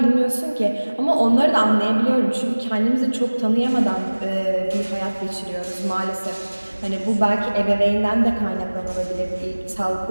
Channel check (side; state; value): both; inverted; correlation -1.00